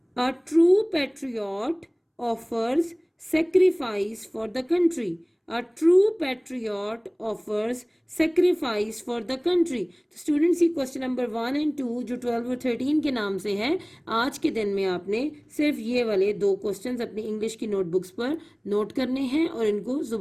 A true patriot offers sacrifice for the country. A true patriot offers sacrifice for the country. تو students, یہ question number 1 اور 2 جو 12 اور 13 کے نام سے ہیں، آج کے دن میں آپ نے صرف یہ والے 2 کوسچنز اپنی انگلش کی نوٹ بکس پر نوٹ کرنے ہیں اور ان کو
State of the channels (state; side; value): identical; both; correlation 1.00